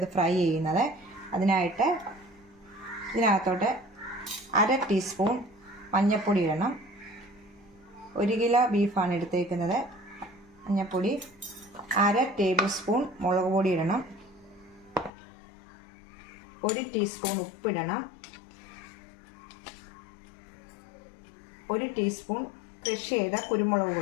ഫ്രൈ ചെയ്യുന്നത്. അതിനായിട്ട് ഇതിനകത്തോട്ട് 1/2 ടീസ്പൂൺ മഞ്ഞൾപ്പൊടി ഇടണം. 1 കിലോ ബീഫാണ് എടുത്തേക്കുന്നത്. മഞ്ഞൾപ്പൊടി 1/2 ടേബിൾ സ്പൂൺ മുളക് പൊടി ഇടണം. 1 ടീസ്പൂൺ ഉപ്പിടണം. 1 ടീസ്പൂൺ ക്രഷ് ചെയ്ത കുരുമുളക്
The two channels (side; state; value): right; drops out; at 15.1 s